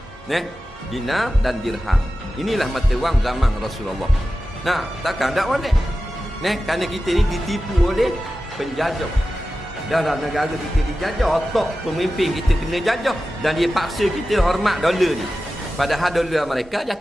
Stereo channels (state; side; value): normal; both; correlation 0.94